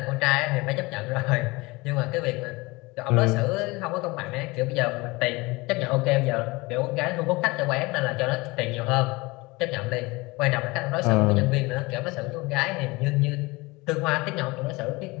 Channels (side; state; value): right; quieter; 23.5 dB